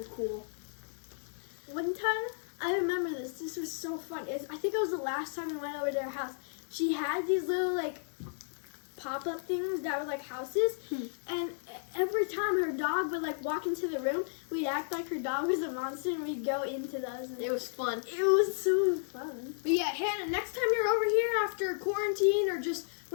cool. One time, I remember this. This was so fun. I think it was the last time we went over to their house. She had these little like pop-up things that were like houses, and every time her dog would like walk into the room, we'd act like her dog was a monster and we'd go into those. And It was fun. it was so fun. But yeah, Hannah, next time you're over here after quarantine or just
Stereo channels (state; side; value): silent; right; digital silence